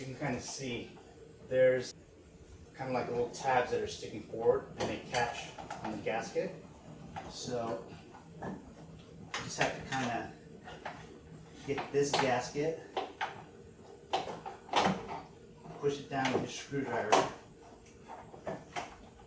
can kind of see there's kind of like little tabs that are sticking forward and they catch on the gasket. So you just have to kind of get this gasket, push it down with a screwdriver,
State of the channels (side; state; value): both; identical; correlation 1.00